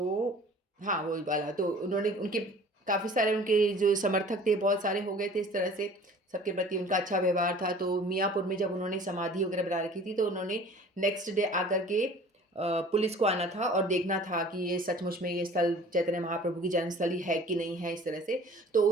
हाँ वो वाला, तो उन्होंने उनके काफ़ी सारे उनके जो समर्थक थे बहुत सारे हो गए थे, इस तरह से सबके प्रति उनका अच्छा व्यवहार था। तो मियाँपुर में जब उन्होंने समाधि वगैरह बना रखी थी, तो उन्होंने नेक्स्ट डे आकर के पुलिस को आना था और देखना था कि ये सचमुच में ये स्थल चैतन्य महाप्रभु की जन्मस्थली है कि नहीं है, इस तरह से। तो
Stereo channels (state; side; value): normal; both; correlation 0.47